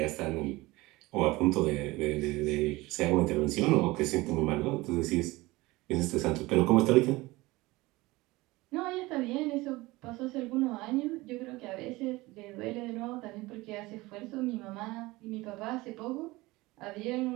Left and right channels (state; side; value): quieter; left; 20.8 dB